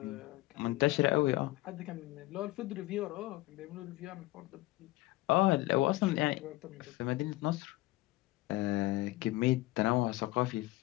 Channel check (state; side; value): quieter; right; 18.9 dB